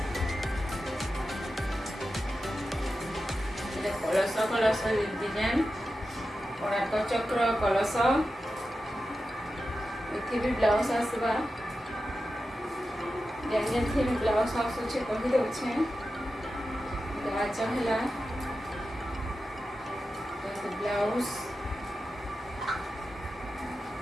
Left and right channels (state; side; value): normal; both; correlation 0.92